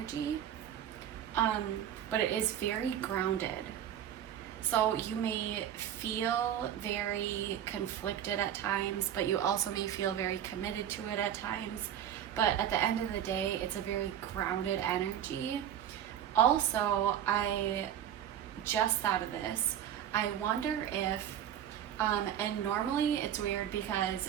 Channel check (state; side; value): quieter; left; 10.3 dB